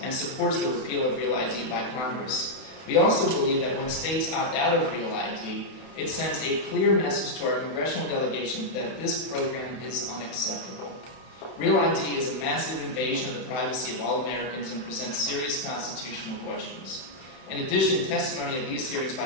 and supports the repeal of Real ID by Congress. We also believe that when states opt out of Real ID, it sends a clear message to our congressional delegation that this program is unacceptable. Real ID is a massive invasion of the privacy of all Americans and presents serious constitutional questions. In addition, testimony at these hearings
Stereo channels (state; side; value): late; right; 31 ms